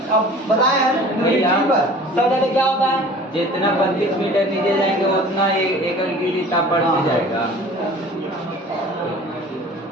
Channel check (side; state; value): both; normal; correlation 0.45